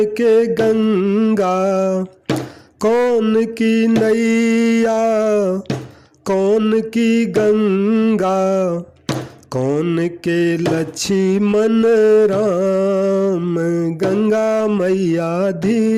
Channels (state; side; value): identical; both; correlation 1.00